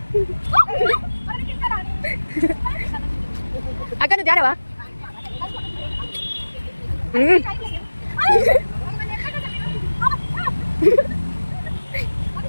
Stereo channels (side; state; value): both; inverted; correlation -1.00